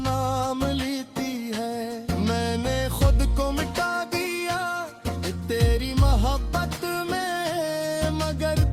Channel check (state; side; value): identical; both; correlation 1.00